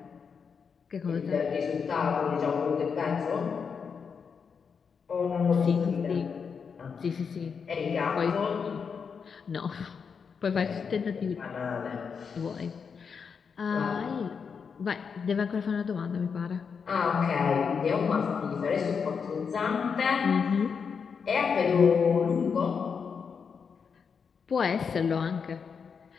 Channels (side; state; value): right; quieter; 6.1 dB